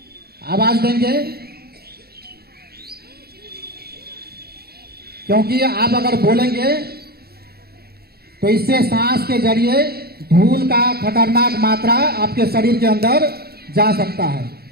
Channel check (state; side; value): late; left; 0.46 ms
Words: आवाज देंगे क्योंकि आप अगर बोलेंगे तो इससे सांस के जरिए धूल का खतरनाक मात्रा आपके शरीर के अंदर जा सकता है।